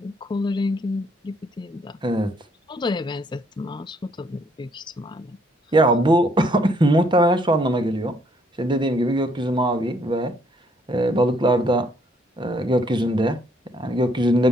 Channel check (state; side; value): normal; both; correlation 0.67